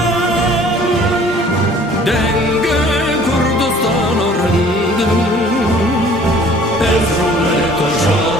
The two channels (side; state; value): both; normal; correlation 0.53